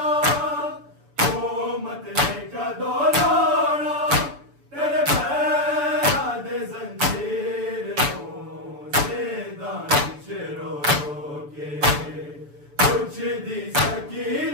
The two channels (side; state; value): left; late; 6.9 ms